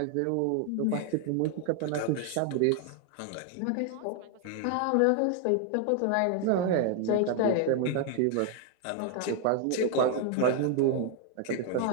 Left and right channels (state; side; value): different; both; correlation 0.00